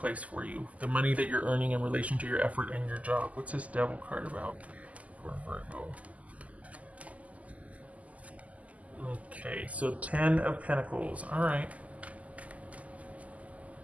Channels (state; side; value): late; left; 0.072 ms